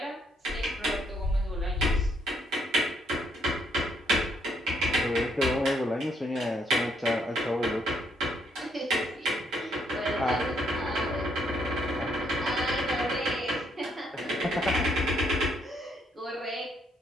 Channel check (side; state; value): both; normal; correlation 0.72